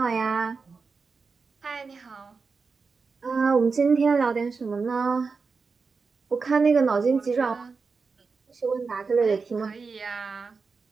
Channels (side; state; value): left; quieter; 4.8 dB